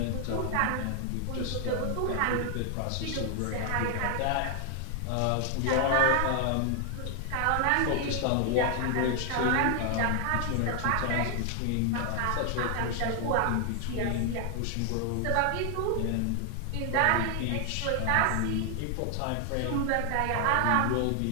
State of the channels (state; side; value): different; both; correlation 0.00